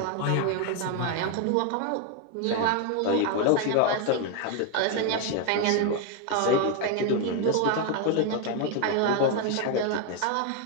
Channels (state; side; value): different; both; correlation 0.01